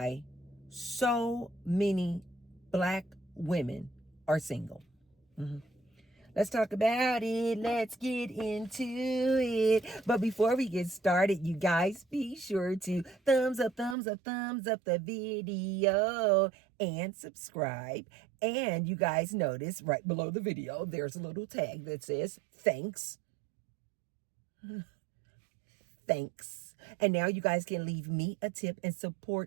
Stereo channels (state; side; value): drops out; left; at 14.0 s